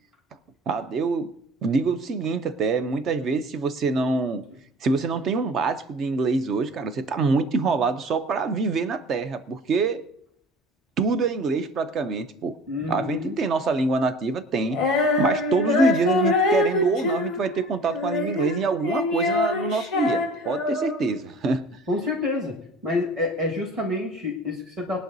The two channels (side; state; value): both; normal; correlation 0.44